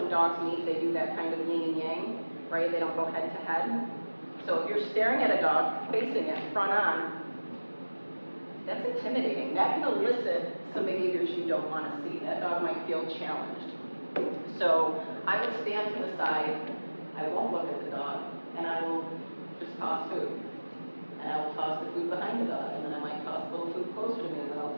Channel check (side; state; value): both; inverted; correlation -1.00